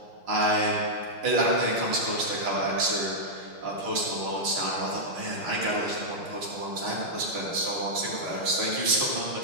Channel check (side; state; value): left; late; 6.4 ms